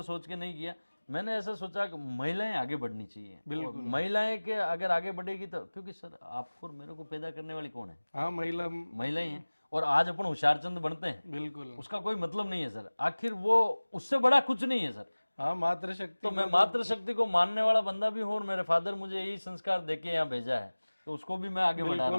सोच के नहीं किया। मैंने ऐसा सोचा कि महिलाएं आगे बढ़नी चाहिए, और महिलाएं के अगर आगे बढ़ेगी तो, क्योंकि सर आपको और मेरे को पैदा करने वाली कौन है? हाँ, महिलाएं हैं। और आज अपन होशियारचंद बनते हैं, बिल्कुल। उसका कोई मतलब नहीं है सर, आखिर वो उससे बड़ा कुछ नहीं है सर। हाँ, मातृशक्ति। तो मैं मातृशक्ति को मानने वाला बंदा भी हूँ, और मेरे फादर मुझे यही संस्कार देके यहाँ भेजा है, तो उसको भी मैं आगे बढ़ा रहा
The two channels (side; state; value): both; inverted; correlation -1.00